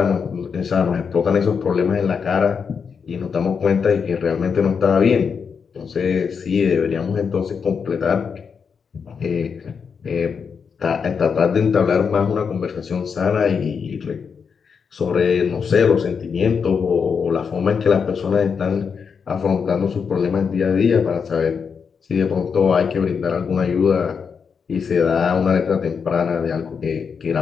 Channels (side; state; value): right; quieter; 6.1 dB